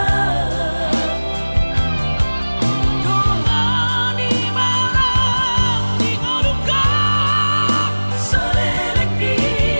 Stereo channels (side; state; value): both; inverted; correlation -1.00